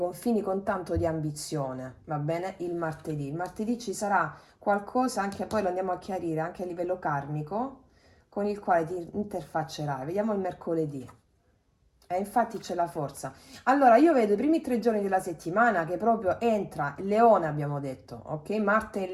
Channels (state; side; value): identical; both; correlation 1.00